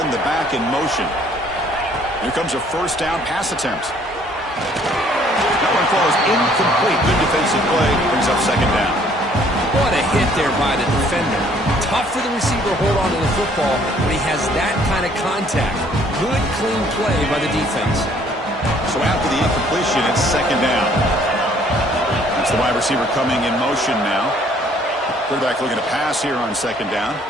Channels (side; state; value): both; normal; correlation 0.60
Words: the back in motion. Here comes a first down pass attempt. That one falls incomplete. Good defensive play. Brings up 2nd down. What a hit there by the defender. Tough for the receiver to hold on to the football when he has that kind of contact. Good, clean play by the defense. So after the incompletion, it's 2nd down. That's the wide receiver coming in motion now. Quarterback looking to pass here on 2nd down.